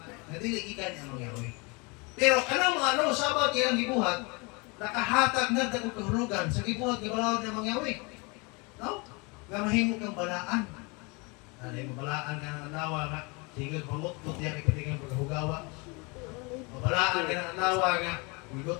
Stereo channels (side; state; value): right; quieter; 29.0 dB